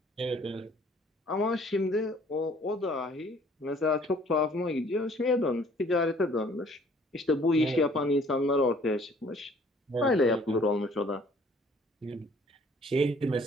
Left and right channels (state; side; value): normal; both; correlation 0.57